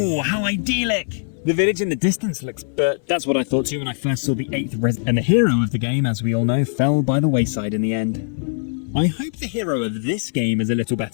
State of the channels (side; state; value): right; silent; 65 dB below the other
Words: how idyllic! The village in the distance looks... But that's what I thought too when I first saw the 8th And the hero of the game, as we all know, fell by the wayside in the end. I hope the hero of this game is a little